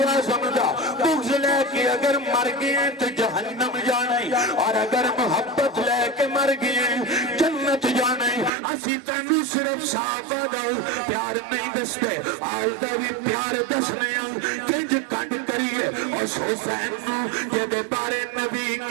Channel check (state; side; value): drops out; left; at 8.5 s